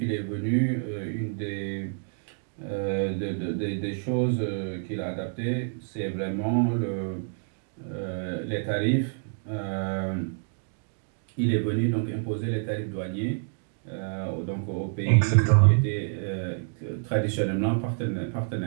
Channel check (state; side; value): silent; left; digital silence